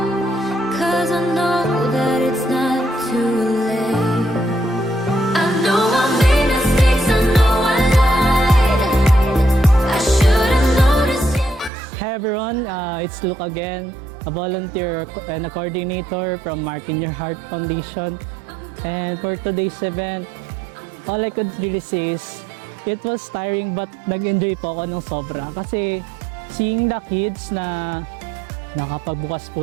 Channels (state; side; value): drops out; left; at 11.7 s